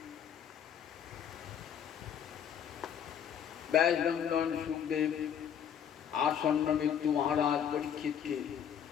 ব্যাসনন্দন সুখদেব আসন্ন মৃত্যু মহারাজ পরীক্ষিতকে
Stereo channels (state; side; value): quieter; right; 8.7 dB